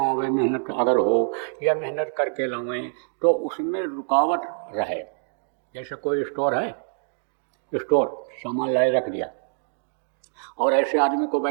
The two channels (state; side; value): silent; left; digital silence